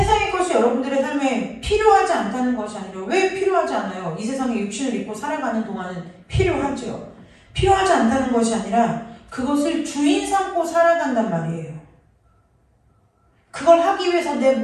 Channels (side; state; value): both; identical; correlation 1.00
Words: 것이 여러분들의 삶에 필요하지 않다는 것이 아니라 왜 필요하지 않아요? 이 세상에 육신을 입고 살아가는 동안은 필요하죠. 필요하지 않다는 것이 아니라 그것을 주인 삼고 살아간단 말이에요. 그걸 하기 위해서 내